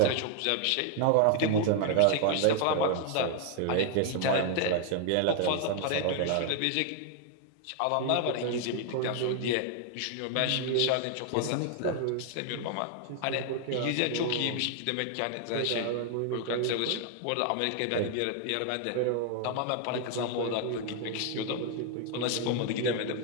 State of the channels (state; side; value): different; both; correlation 0.00